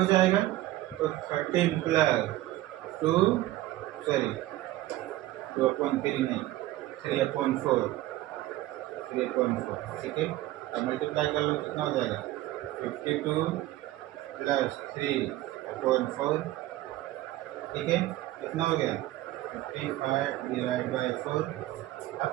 जाएगा। तो 13 प्लस 2/3 नहीं 3/4, ठीक है। अब मल्टीप्लाई कर लो, कितना हो जाएगा 52 प्लस 3/4, ठीक है। कितना हो गया 55 डिवाइड बाई 4।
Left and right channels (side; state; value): left; quieter; 16.0 dB